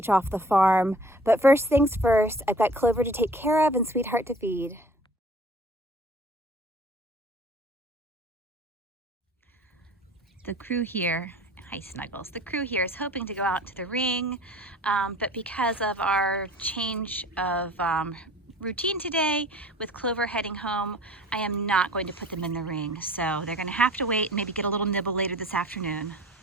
off the farm. But first things first, I've got Clover to take care of and Sweetheart to feed. The crew here, hi Snuggles, the crew here is hoping to go out to the ring, but because of our change of routine today with Clover heading home, I am not going to put them in the ring. So they're going to have to wait and maybe get a little nibble later this afternoon.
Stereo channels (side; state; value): both; normal; correlation 0.46